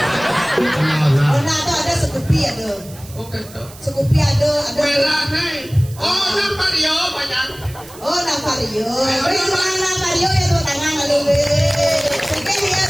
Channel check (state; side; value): noise; right; hiss, 19 dB below the sound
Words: Honda tu ada Scoopy ada. oke tuh Scoopy ada. merah nih oh nampak dia banyak Oh, Navario. Navario ya tuh tangan lalu. Sige